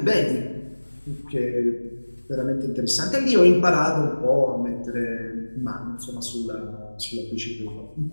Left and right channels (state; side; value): inverted; both; correlation -1.00